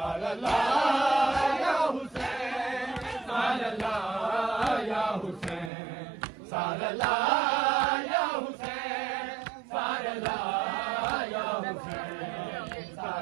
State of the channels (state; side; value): drops out; left; at 5.7 s